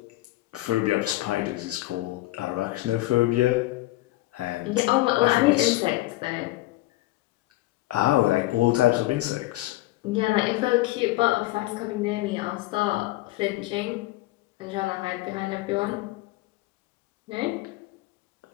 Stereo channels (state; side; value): quieter; right; 18.1 dB